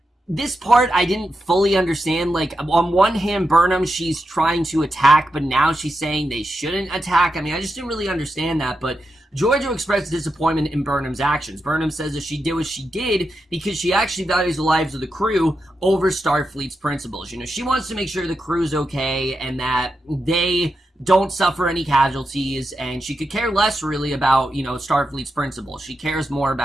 this part I didn't fully understand. Like, on one hand, Burnham, she's trying to attack, but now she's saying they shouldn't attack. I mean, I just didn't really understand that, but Giorgio expressed disappointment in Burnham's actions. Burnham says that she did what she did because she actually values the lives of the crew over Starfleet's principles. She wants to make sure the crew's okay and that they don't suffer any casualties, and she could care less really about, Starfleet's principles. She cares more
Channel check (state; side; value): normal; both; correlation 0.87